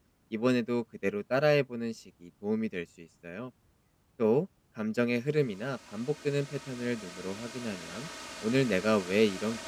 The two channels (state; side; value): identical; both; correlation 1.00